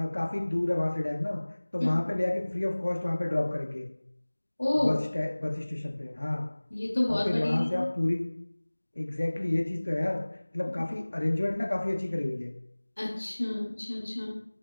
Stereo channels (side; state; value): both; inverted; correlation -1.00